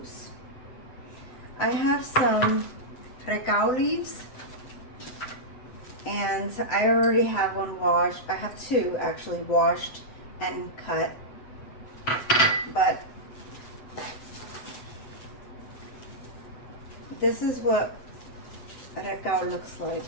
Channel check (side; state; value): right; late; 7.9 ms